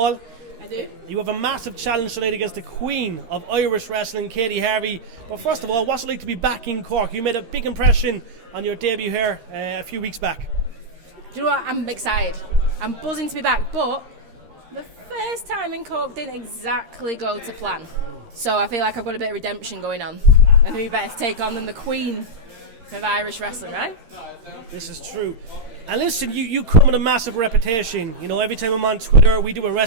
I do. You have a massive challenge tonight against the queen of Irish wrestling, Katie Harvey. But first of all, what's it like to be back in Cork? You made a big impression on your debut here a few weeks back. Do you know what? I'm excited. I'm buzzing to be back, but the first time in Cork didn't exactly go to plan. So I feel like I've got a bit of redemption going on. And who better to take on than the queen of Irish wrestling, right? This is true. And listen, you come with a massive reputation. You know, every time I'm on Twitter, we do a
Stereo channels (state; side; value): late; left; 13 ms